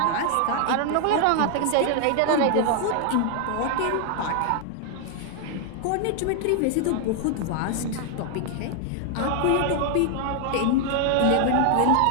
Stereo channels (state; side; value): different; both; correlation 0.00